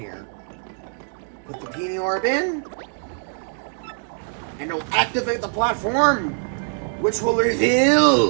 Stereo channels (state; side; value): silent; left; digital silence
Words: Put the peony orb in. And it'll activate the platform, which will